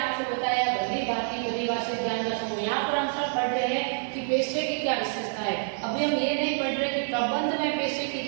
बताया भली भांति परिभाषित ज्ञान का समूह। यहाँ पर हम सब पढ़ रहे हैं कि पेशे की क्या विशेषता है। अभी हम ये नहीं पढ़ रहे कि प्रबंध में पेशे की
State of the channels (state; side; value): silent; left; 60 dB below the other